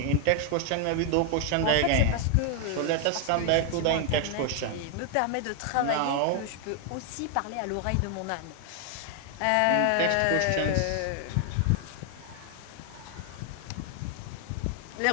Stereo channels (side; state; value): both; different; correlation 0.00